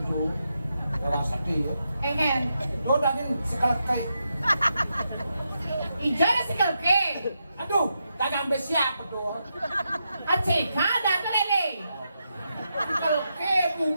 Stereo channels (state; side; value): inverted; both; correlation -0.85